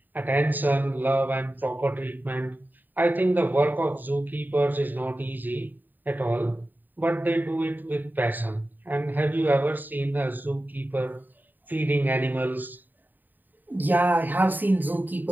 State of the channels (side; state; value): left; late; 0.089 ms